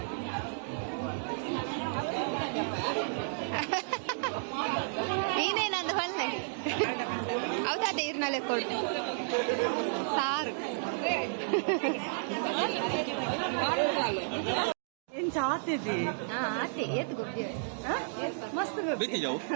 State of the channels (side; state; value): left; silent; digital silence